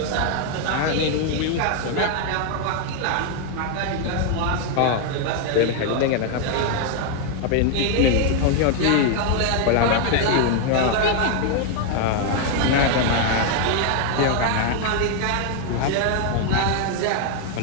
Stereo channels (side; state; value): both; different; correlation 0.00